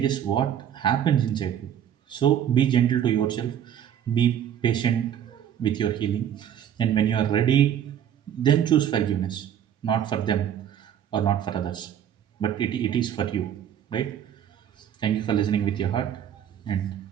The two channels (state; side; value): quieter; left; 9.7 dB